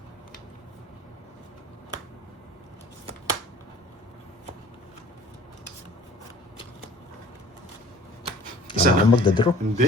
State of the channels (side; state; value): both; normal; correlation 0.49